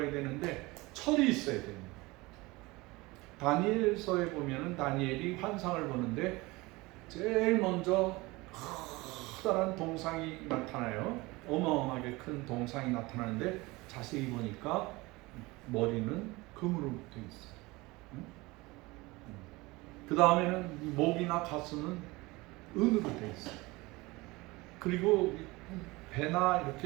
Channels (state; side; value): quieter; left; 22.4 dB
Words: 되는데 철이 있어야 됩니다. 다니엘서에 보면은 다니엘이 환상을 보는데 제일 먼저 커다란 동상이 나타나요. 어마어마하게 큰 동상이 나타나는데 자세히 보니까 머리는 금으로 되어 있어요. 그 다음에는 목이나 가슴은 은으로 되어 있어요. 그리고 배나